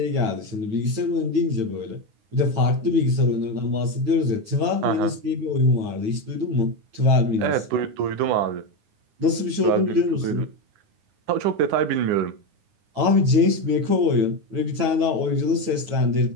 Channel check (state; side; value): late; left; 8.9 ms